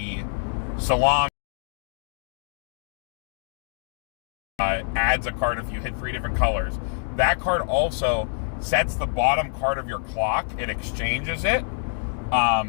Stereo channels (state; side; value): silent; right; digital silence